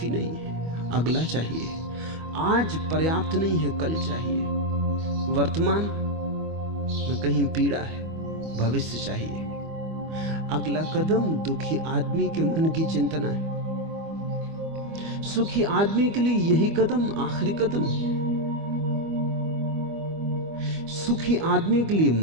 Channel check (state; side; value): late; left; 25 ms